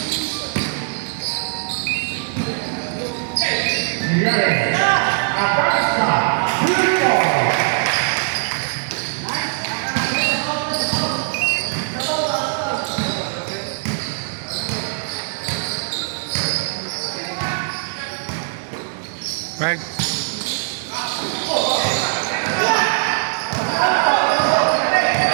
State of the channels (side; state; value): left; silent; digital silence